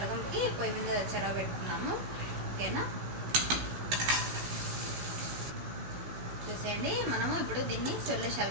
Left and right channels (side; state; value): left; late; 16 ms